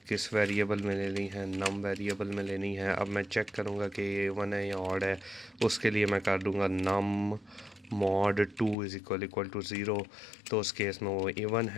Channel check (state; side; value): drops out; right; at 8.8 s